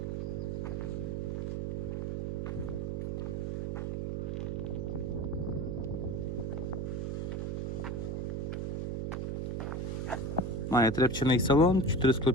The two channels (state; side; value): noise; right; hum, 1 dB below the sound